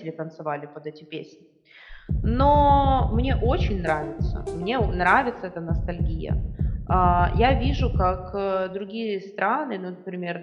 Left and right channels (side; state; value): both; identical; correlation 1.00